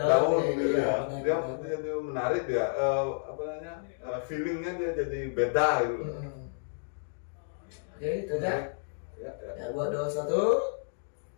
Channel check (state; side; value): silent; right; digital silence